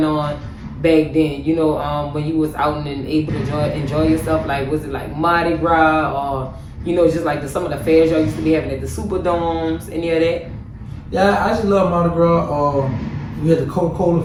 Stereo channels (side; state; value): both; identical; correlation 1.00